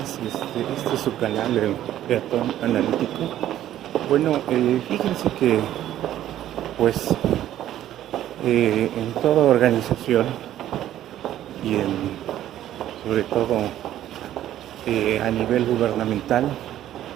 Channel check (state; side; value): quieter; left; 12.4 dB